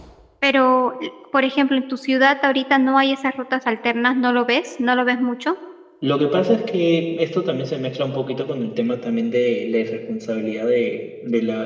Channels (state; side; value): identical; both; correlation 1.00